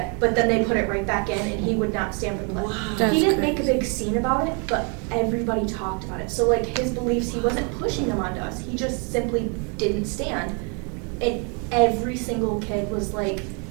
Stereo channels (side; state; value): left; quieter; 36.3 dB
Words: but then they put it right back in, and he would not stand for the pledge. Wow. He didn't make a big scene about it, but everybody talked about it. So like his beliefs, he wasn't pushing them onto us. He just simply didn't stand. And every single kid was like